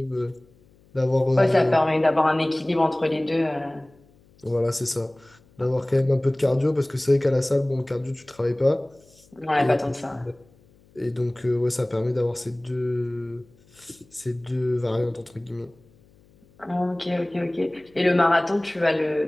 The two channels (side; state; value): left; noise; hum, 30 dB below the sound